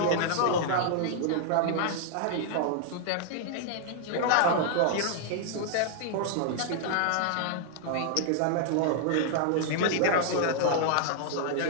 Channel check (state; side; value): different; both; correlation -0.01